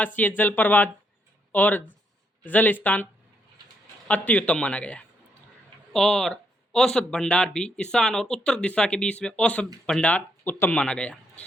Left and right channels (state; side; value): normal; both; correlation 0.75